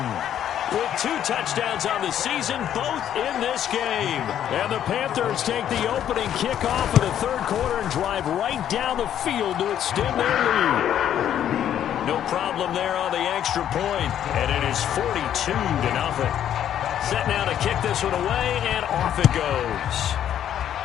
with 2 touchdowns on the season, both in this game. And the Panthers take the opening kickoff of the 3rd quarter and drive right down the field to extend their lead. No problem there on the extra point, and it is 42-0. Set now to kick this one away, and off it goes.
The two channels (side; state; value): right; quieter; 10.3 dB